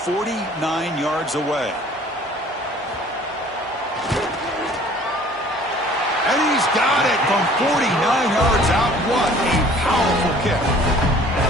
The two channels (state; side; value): normal; both; correlation 0.52